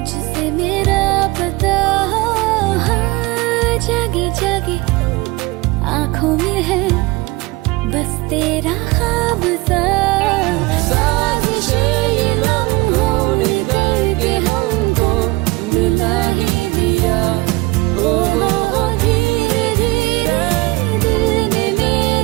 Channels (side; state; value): left; quieter; 22.6 dB